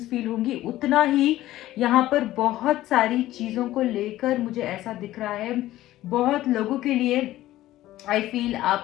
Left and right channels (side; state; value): right; quieter; 15.1 dB